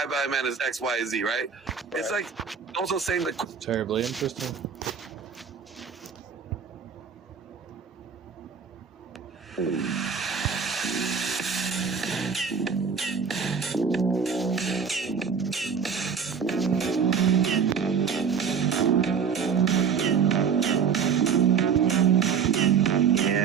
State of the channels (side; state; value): left; quieter; 6.5 dB